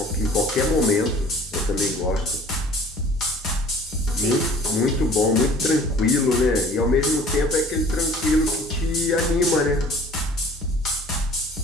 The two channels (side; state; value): both; normal; correlation 0.50